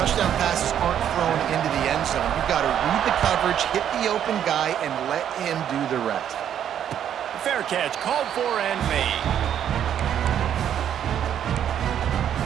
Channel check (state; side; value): quieter; left; 9.7 dB